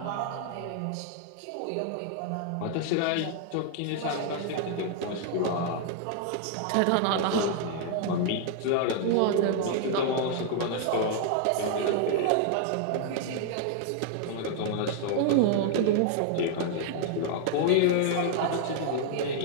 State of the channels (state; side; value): different; both; correlation 0.00